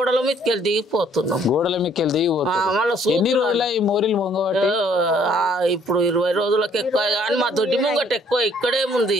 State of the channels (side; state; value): both; normal; correlation 0.62